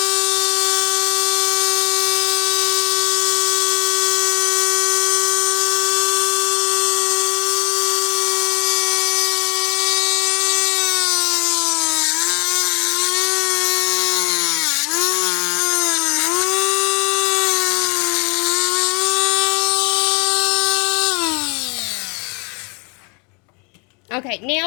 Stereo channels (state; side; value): quieter; right; 33.0 dB